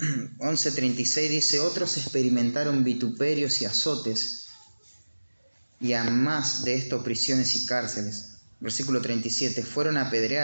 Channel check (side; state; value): both; inverted; correlation -1.00